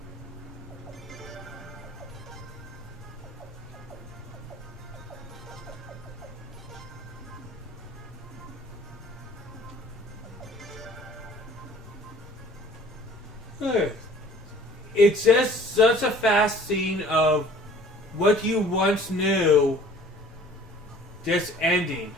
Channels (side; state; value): both; normal; correlation 0.51